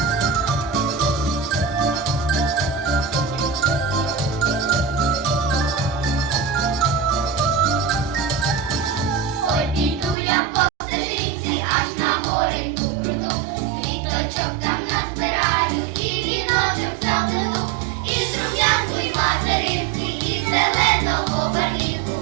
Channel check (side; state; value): left; drops out; at 10.2 s